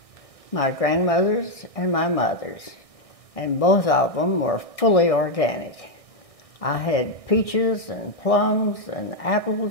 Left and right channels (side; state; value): right; late; 1.6 ms